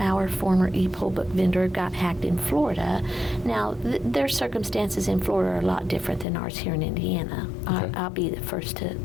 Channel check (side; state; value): right; drops out; at 6.2 s